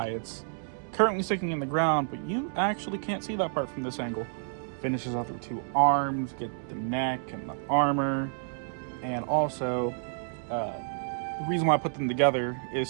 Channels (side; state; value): left; silent; digital silence